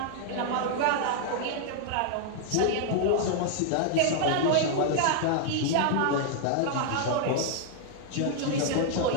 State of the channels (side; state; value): both; different; correlation 0.00